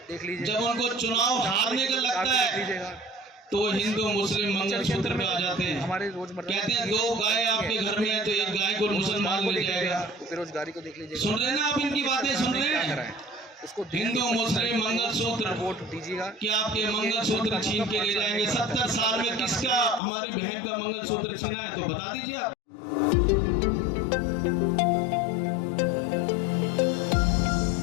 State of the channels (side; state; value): right; drops out; at 20.0 s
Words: देख लीजिए। जब उनको चुनाव हारने का लगता है तो वो हिंदू मुस्लिम मंगलसूत्र पे आ जाते हैं। हमारे रोजमर्रा कहते हैं 2 गाय आपके घर में है तो एक गाय को मुसलमान ले जाएगा। बेरोजगारी को देख लीजिए। सुन रहे हैं ना आप इनकी बातें? सुन रहे हैं? उसको हिंदू मुस्लिम मंगलसूत्र, वोट दीजिएगा। कि आपके मंगलसूत्र छीन के ले जाएंगे। 70 साल में किसका हमारी बहन का मंगलसूत्र छीना है तो बता दीजिए आप।